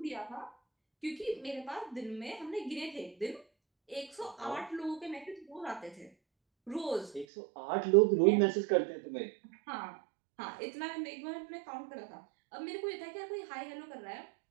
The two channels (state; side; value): drops out; left; at 7.2 s